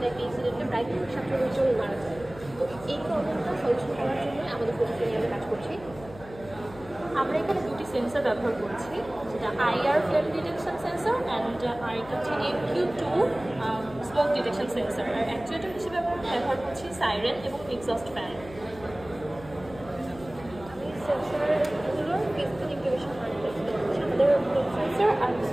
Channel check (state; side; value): noise; left; hum, 18 dB below the sound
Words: একটা ইনসিডেন্টে প্রায় 17 জন মারা যায়। তো এই প্রবলেমটা সলিউশন করার জন্য আমাদের প্রযুক্তি নিয়ে আমরা কাজ করছি। আমরা এখানে দুটি সেন্সর ব্যবহার করছি, যেটা IR flame detection sensor and আরেকটা হচ্ছে MQ2 স্মোক ডিটেকশন সেন্সর। আর অ্যাকচুয়েটার হিসেবে আমরা ব্যবহার করছি সাইরেন এবং এক্সস্ট ফ্যান। আমি সেন্সরগুলোর ফিজিক্যাল ইন্টিগ্রেশন আমাদের সেন্সর আর